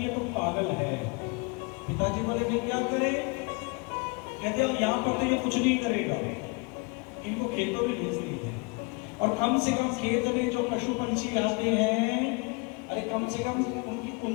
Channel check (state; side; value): quieter; right; 30.2 dB